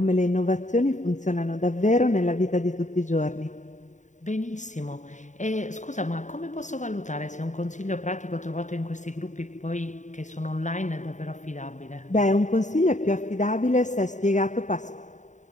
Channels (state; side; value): late; right; 0.35 ms